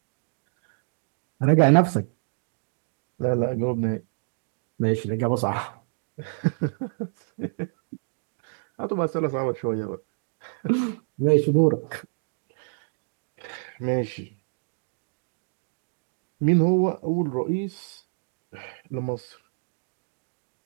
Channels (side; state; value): left; silent; digital silence